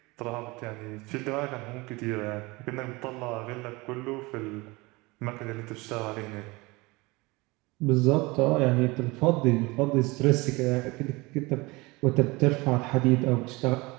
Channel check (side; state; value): left; quieter; 23.7 dB